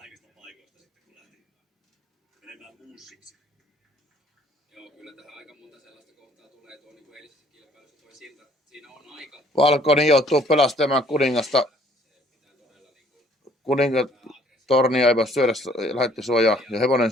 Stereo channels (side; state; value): both; normal; correlation 0.60